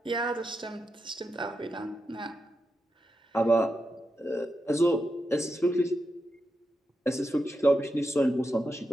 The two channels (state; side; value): normal; both; correlation 0.87